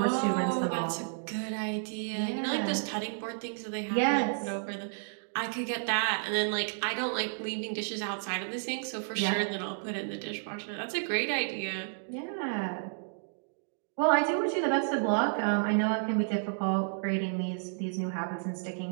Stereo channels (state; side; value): silent; left; digital silence